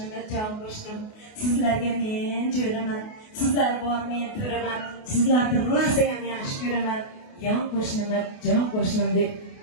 jon qo'shnim, sizlarga men jo'raman, sizlar bor men to'raman, sizlarni rosa ham yaxshi ko'raman. Yon qo'shnima, jon qo'shnim deb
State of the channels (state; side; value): late; right; 28 ms